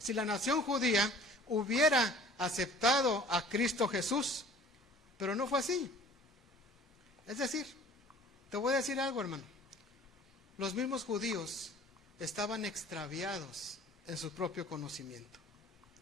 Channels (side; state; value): both; normal; correlation 0.49